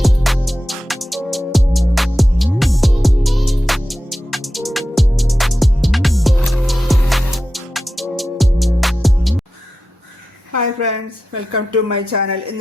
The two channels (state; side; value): normal; both; correlation 0.91